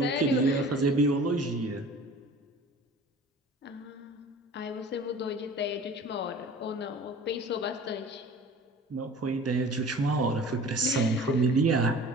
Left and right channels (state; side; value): normal; both; correlation 0.43